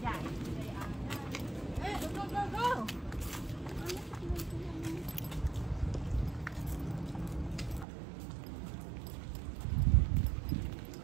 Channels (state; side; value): drops out; left; at 7.9 s